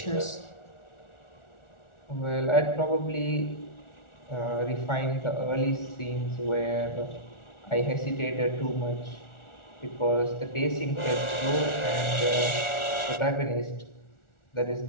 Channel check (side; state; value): right; late; 1.4 ms